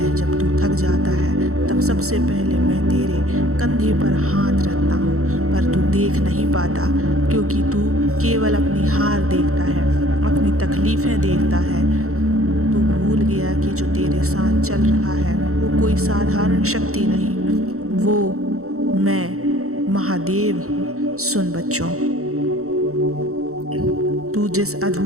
जब तू थक जाता है तब सबसे पहले मैं तेरे कंधे पर हाथ रखता हूँ, पर तू देख नहीं पाता क्योंकि तू केवल अपनी हार देखता है, अपनी तकलीफ़ें देखता है। तू भूल गया कि जो तेरे साथ चल रहा है वो कोई साधारण शक्ति नहीं, वो मैं महादेव हूँ। सुन बच्चों, तू जिस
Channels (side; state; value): left; late; 0.64 ms